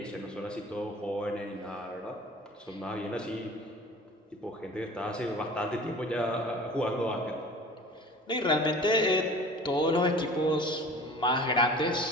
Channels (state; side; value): normal; both; correlation 0.43